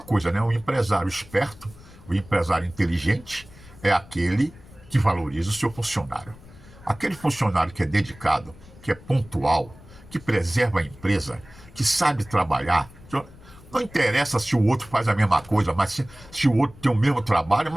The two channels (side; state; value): left; noise; rumble, 21 dB below the sound